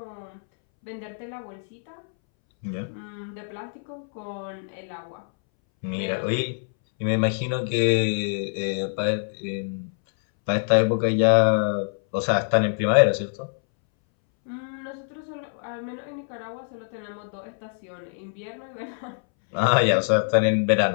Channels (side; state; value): right; silent; 61 dB below the other